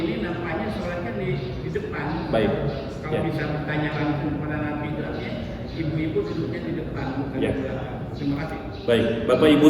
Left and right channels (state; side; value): identical; both; correlation 1.00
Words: nampaknya sholatnya di depan. Baik. Kalau Ya. bisa bertanya langsung kepada Nabi, berarti ibu-ibu duduknya di depan, bukan Ya. di belakang. Terima kasih. Baik, Bapak Ibu